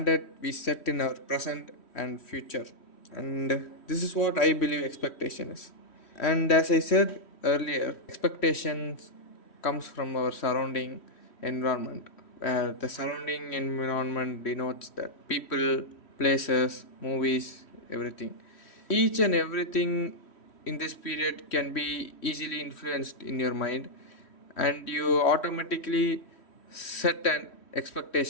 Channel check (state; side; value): late; right; 3.1 ms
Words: we set in our present and future. And this is what I believe expectation is. And as I said earlier, expectations comes from our surrounding environment, where the surrounding environment denotes that people, places, movies, everything. Each and everything in this period can be easily influenced in your mind, and you automatically set an